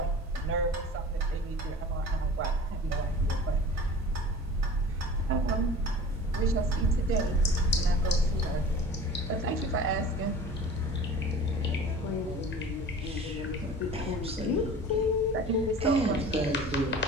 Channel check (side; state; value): both; normal; correlation 0.41